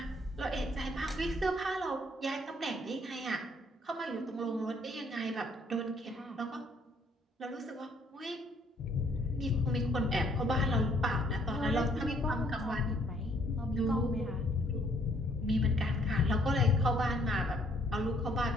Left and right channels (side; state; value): both; normal; correlation 0.65